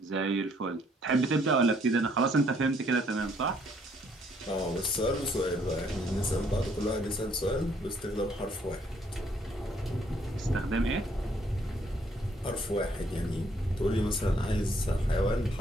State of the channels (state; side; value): normal; both; correlation 0.67